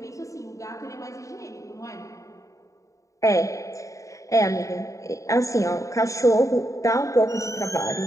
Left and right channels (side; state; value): right; late; 0.16 ms